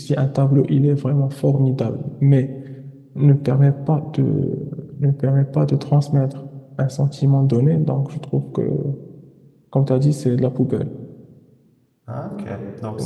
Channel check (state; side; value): identical; both; correlation 1.00